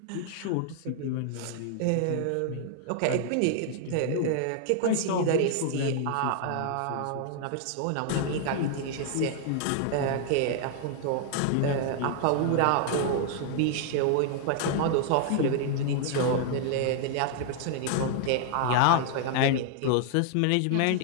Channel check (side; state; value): both; different; correlation 0.00